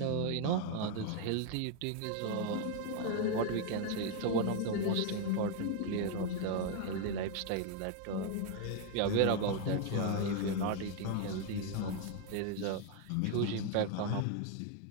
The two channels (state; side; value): different; both; correlation 0.01